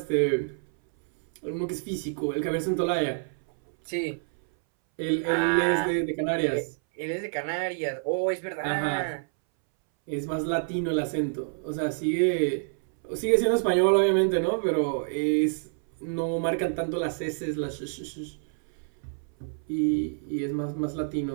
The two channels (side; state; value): left; silent; 60 dB below the other